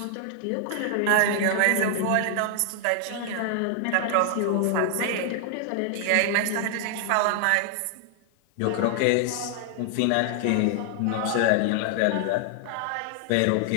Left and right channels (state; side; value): different; both; correlation 0.00